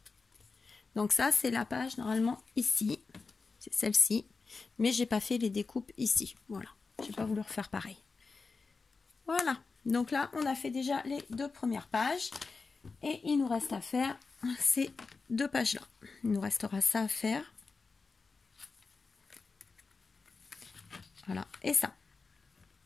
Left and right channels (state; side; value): quieter; right; 4.3 dB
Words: Donc ça, c'est la page normalement ici, c'est celle-ci, mais j'ai pas fait les découpes ici. Voilà, j'ai pas voulu refaire pareil. Voilà, donc là, on a fait déjà les 2 premières pages, et il nous reste à faire ces 2 pages-là. Il nous restera ça à faire. Voilà, et ça.